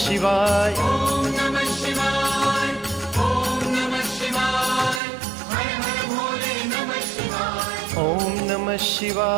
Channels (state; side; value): drops out; left; at 5.0 s